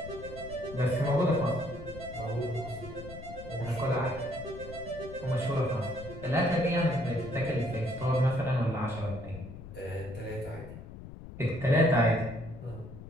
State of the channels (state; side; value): noise; left; rumble, 13 dB below the sound